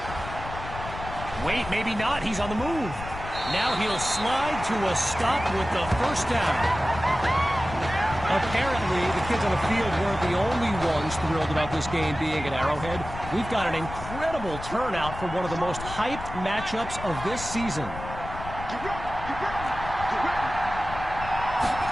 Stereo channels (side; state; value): left; noise; rumble, 10 dB below the sound